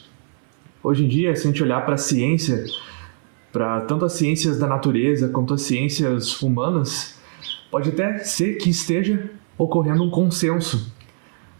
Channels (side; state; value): left; silent; 63 dB below the other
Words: Hoje em dia, se a gente olhar para a ciência, para tanto as ciências da natureza quanto as ciências humanas, pode até ser que esteja ocorrendo um consenso.